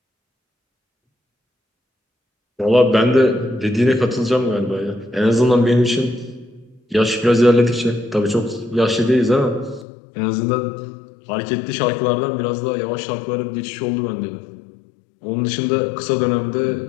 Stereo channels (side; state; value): right; drops out; at 9.9 s